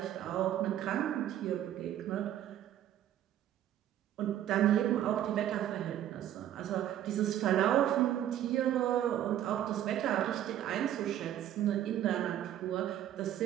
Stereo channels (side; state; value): left; quieter; 11.6 dB